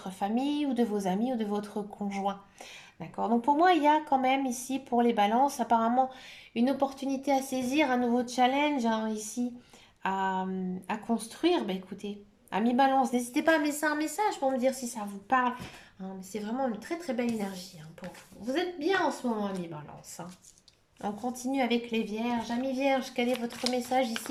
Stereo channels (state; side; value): identical; both; correlation 1.00